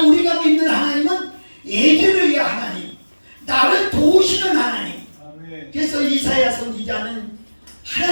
우리가 믿는 하나님은 에제르의 하나님, 나를 도우시는 하나님. 그래서 이사야 선지자는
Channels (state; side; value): inverted; both; correlation -1.00